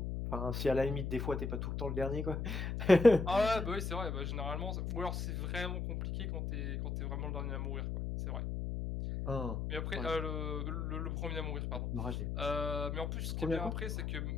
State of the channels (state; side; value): noise; left; hum, 2 dB below the sound